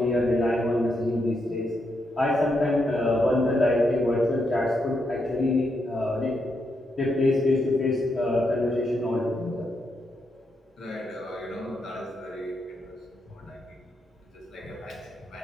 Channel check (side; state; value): both; normal; correlation 0.81